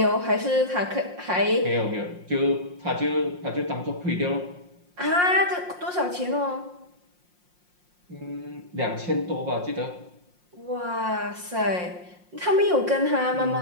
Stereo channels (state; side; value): late; left; 5.6 ms